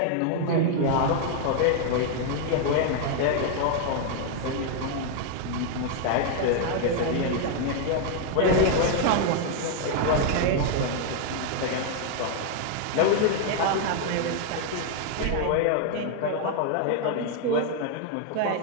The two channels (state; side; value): different; both; correlation 0.00